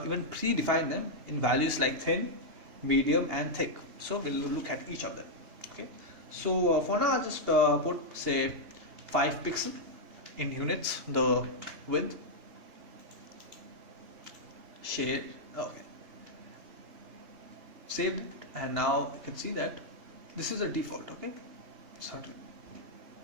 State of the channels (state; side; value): late; left; 2.8 ms